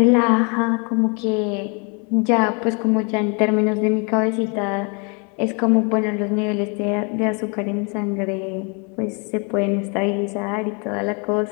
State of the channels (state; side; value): quieter; right; 34.8 dB